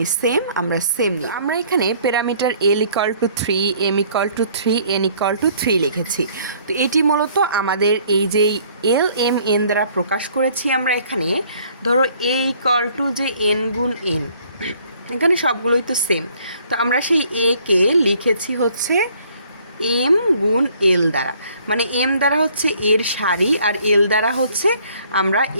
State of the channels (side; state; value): both; inverted; correlation -0.60